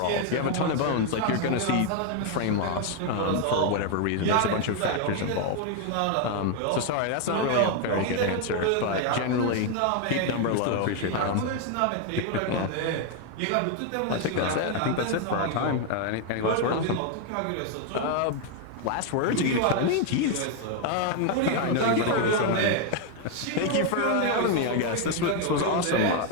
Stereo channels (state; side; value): different; both; correlation 0.01